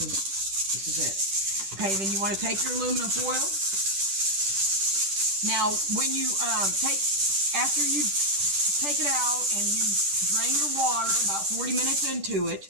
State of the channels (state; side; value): late; left; 10 ms